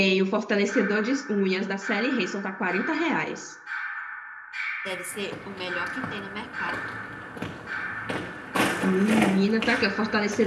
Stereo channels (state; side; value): identical; both; correlation 1.00